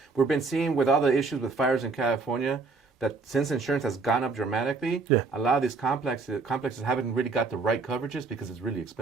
we've been seeing with all the issues with fires in California, that since insurance has gone up dramatically, a lot of these complexes haven't really got the right coverages because it's really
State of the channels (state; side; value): quieter; left; 4.2 dB